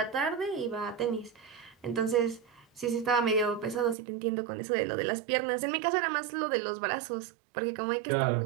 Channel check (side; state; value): left; drops out; at 4.0 s